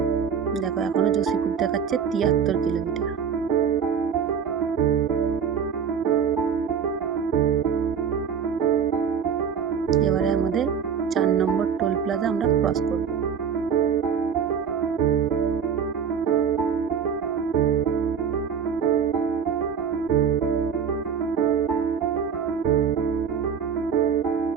দেখো এখনো যোশীপুর দেখাচ্ছে 73 কিলোমিটার। এবারে আমাদের 4 নম্বর টোল প্লাজা আমরা ক্রস করব।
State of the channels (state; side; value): quieter; left; 7.1 dB